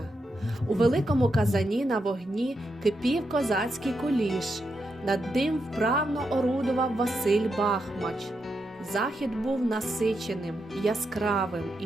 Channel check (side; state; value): both; normal; correlation 0.84